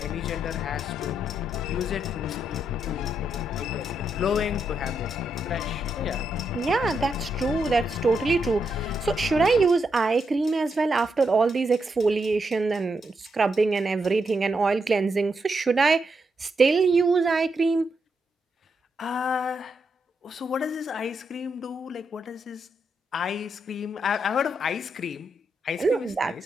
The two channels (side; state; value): both; normal; correlation 0.81